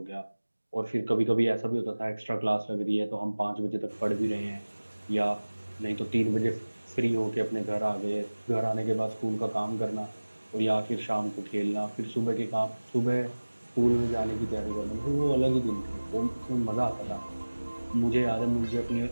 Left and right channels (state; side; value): inverted; both; correlation -1.00